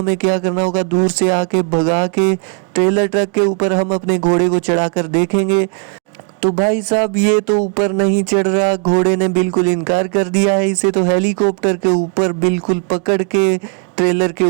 क्या करना होगा, दूर से आके भगा के ट्रेलर ट्रक के ऊपर हम अपने घोड़े को चढ़ाकर देखेंगे। तो भाई साहब ये तो ऊपर नहीं चढ़ रहा, घोड़े ने बिल्कुल इनकार कर दिया है। इसे तो हेलीकॉप्टर के ऊपर बिल्कुल पकड़ के ट्रेलर के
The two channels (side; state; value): left; quieter; 38.2 dB